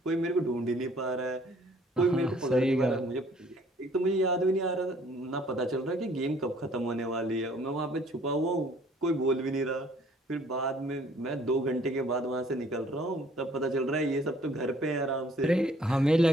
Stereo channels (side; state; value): both; normal; correlation 0.58